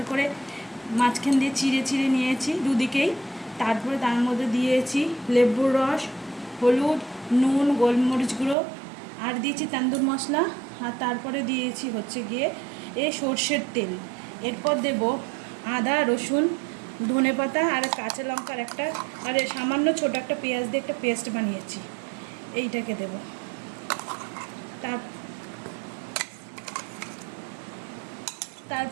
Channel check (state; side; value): drops out; left; at 8.6 s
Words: করে মাঝখান দিয়ে চিড়ে চিড়ে নিয়েছি দুদিকেই। তারপরে তার মধ্যে দিয়েছি লেবুর রস, হলুদ, নুন, গোলমরিচ গুঁড়ো, আর দিয়েছি তান্দুর মশলা, আর তারপরে দিয়েছি হচ্ছে গিয়ে সর্ষের তেল। এরপর দেব আদা, রসুন, ধনেপাতা আর কাঁচা লঙ্কার একটা, আর সামান্য ছোটো একটা পেঁয়াজ দিয়ে একটা পেস্ট বানিয়েছি, এইটাকে দেব।